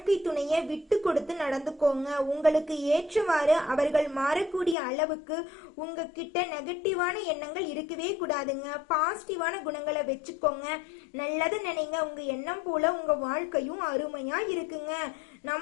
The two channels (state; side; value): drops out; right; at 4.8 s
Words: துணையை விட்டு கொடுத்து நடந்துக்கோங்க. உங்களுக்கு ஏற்றவாறு அவர்கள் மாறக்கூடிய அளவுக்கு உங்ககிட்ட நெகட்டிவான எண்ணங்கள் இருக்கவே கூடாதுங்க. பாசிட்டிவான குணங்களை வச்சுக்கோங்க. நல்லது நினைங்க. உங்க எண்ணம் போல உங்க வாழ்க்கையும் அருமையா இருக்குங்க.